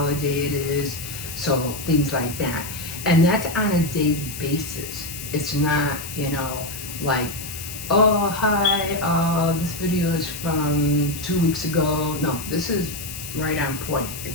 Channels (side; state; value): left; noise; hiss, 10 dB below the sound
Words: it is, so things like that. And that's on a daily basis. It's not, you know, like, oh, hi, this video is from 2 weeks ago. No, this is right on point.